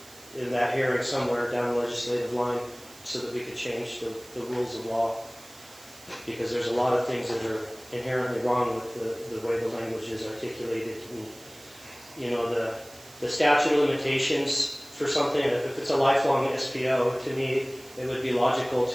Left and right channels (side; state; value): right; noise; hiss, 21 dB below the sound